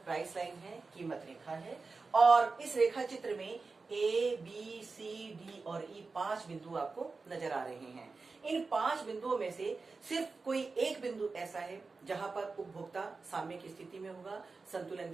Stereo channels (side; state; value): left; quieter; 4.1 dB